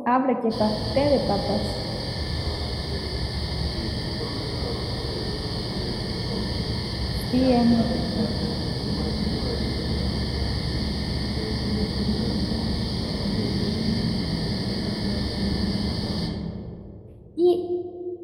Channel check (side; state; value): both; identical; correlation 1.00